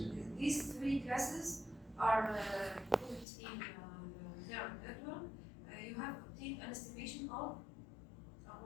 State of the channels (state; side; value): drops out; right; at 3.2 s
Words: These three classes are put in neural network. You have obtained an estimation of